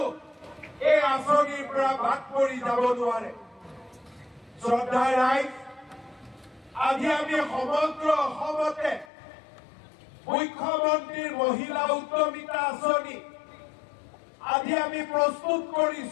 এই আঁচনিৰ পৰা বাদ পৰি যাব নোৱাৰে। শ্ৰদ্ধাৰ ৰাইজ, আজি আমি সমগ্ৰ অসমতে মুখ্যমন্ত্ৰীৰ মহিলা উদ্যমিতা আঁচনি আজি আমি প্ৰস্তুত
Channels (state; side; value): drops out; right; at 9.1 s